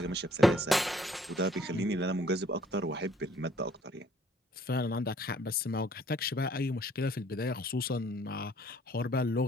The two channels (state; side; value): normal; both; correlation 0.60